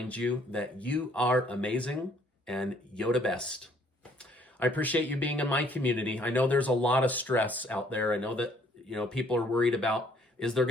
you that you are amazing and Yoda best. I appreciate you being in my community. I know there's a lot of stress out there. I know that, people are worried about, is there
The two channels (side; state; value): both; normal; correlation 0.63